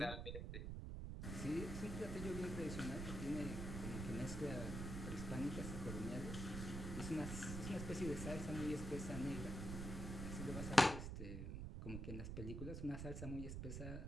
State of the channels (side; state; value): right; noise; rumble, 4 dB below the sound